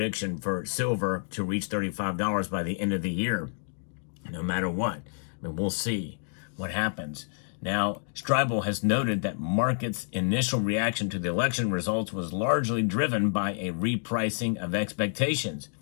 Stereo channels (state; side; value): silent; right; digital silence